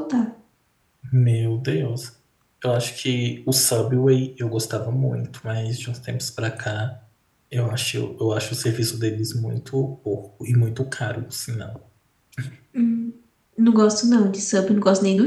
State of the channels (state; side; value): identical; both; correlation 1.00